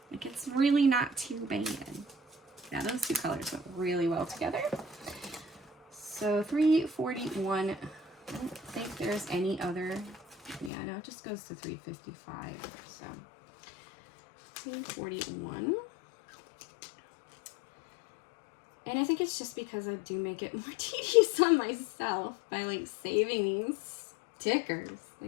Like, it's really not too bad. Yeah, those two colors went really well together. So 341, I don't think there's any other, yeah, no, it just goes to 355, so 341. And I think it's just because I do make it more tedious on myself by like saving these stickers.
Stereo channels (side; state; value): right; drops out; at 10.7 s